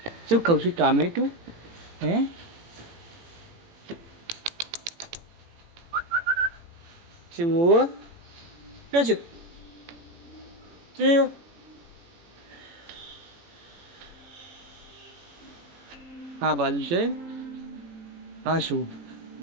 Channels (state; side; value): late; left; 18 ms